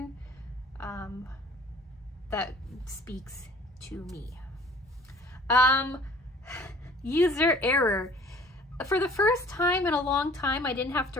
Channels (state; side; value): normal; both; correlation 0.51